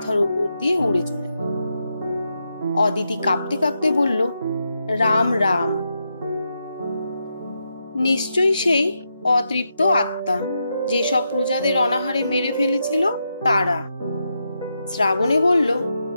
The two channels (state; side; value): inverted; both; correlation -0.84